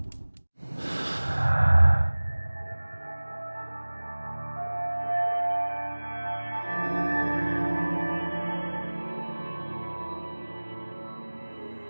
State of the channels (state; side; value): inverted; both; correlation -1.00